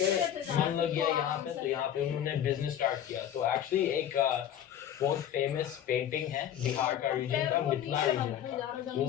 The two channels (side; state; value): right; quieter; 10.2 dB